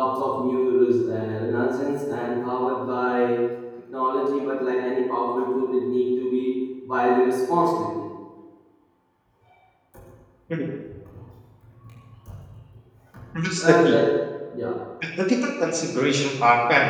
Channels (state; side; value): identical; both; correlation 1.00